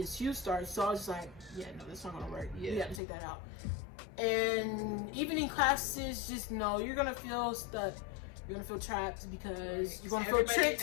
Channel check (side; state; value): right; drops out; at 3.0 s